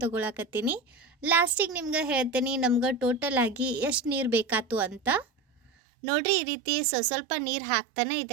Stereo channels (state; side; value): drops out; left; at 5.7 s